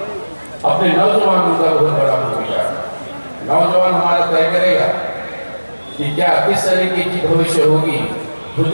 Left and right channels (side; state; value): both; inverted; correlation -1.00